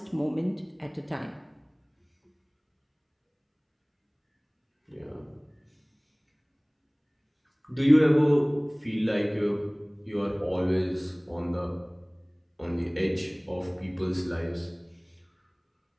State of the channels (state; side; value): identical; both; correlation 1.00